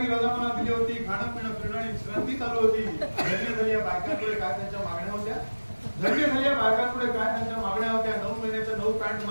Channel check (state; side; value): inverted; both; correlation -1.00